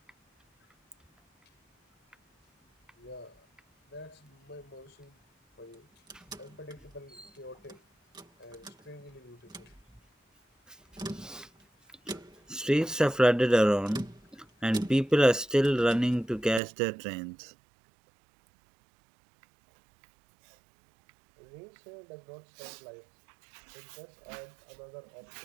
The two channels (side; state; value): left; drops out; at 16.6 s